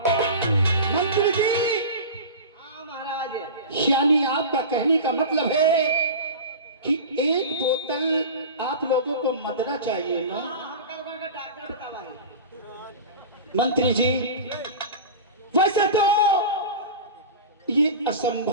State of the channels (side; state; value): both; inverted; correlation -0.31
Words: मंत्री जी, हाँ महाराज, यानी आपका कहने का मतलब है कि एक बोतल आप लोगों को मदरा चाहिए ना? हम कल का डॉक्टर बतावा। मंत्री जी, वैसे तो ये